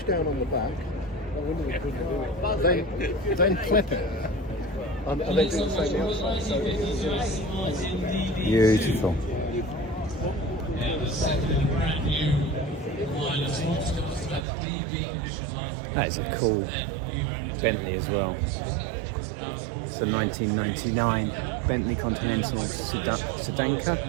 down on the back, then clip it, and then do the same the other side. Beautiful. That is a cool Bentley as well. It's a 1999 Bentley Continental Sedanka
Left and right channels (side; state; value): left; drops out; at 14.4 s